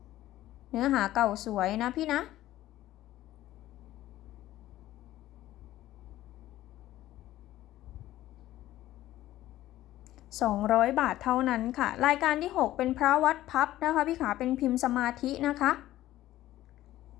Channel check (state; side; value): quieter; right; 14.6 dB